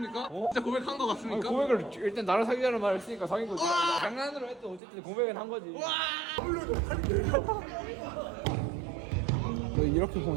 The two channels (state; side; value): drops out; left; at 4.8 s